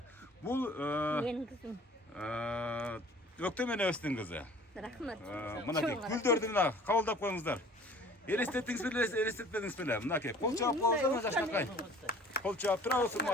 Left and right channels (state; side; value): normal; both; correlation 0.50